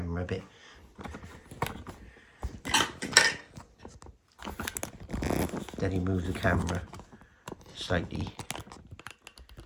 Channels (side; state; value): both; identical; correlation 1.00